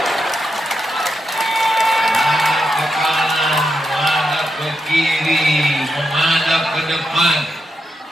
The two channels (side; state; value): both; normal; correlation 0.85